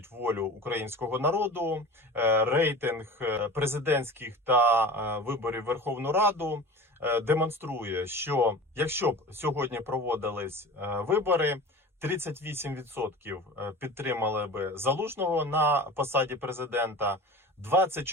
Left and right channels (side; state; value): both; normal; correlation 0.35